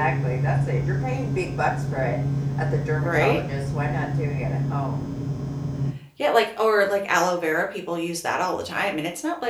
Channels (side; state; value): both; identical; correlation 1.00